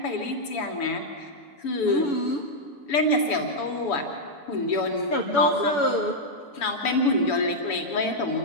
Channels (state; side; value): late; right; 7.0 ms